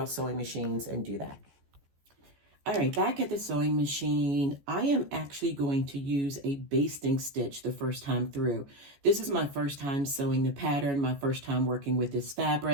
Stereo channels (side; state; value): left; late; 14 ms